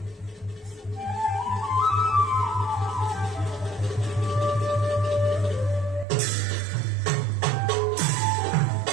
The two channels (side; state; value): left; drops out; at 6.1 s